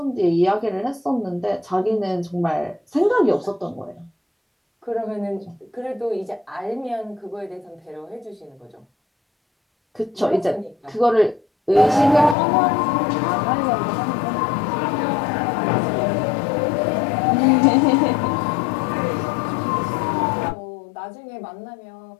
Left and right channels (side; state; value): right; drops out; at 12.4 s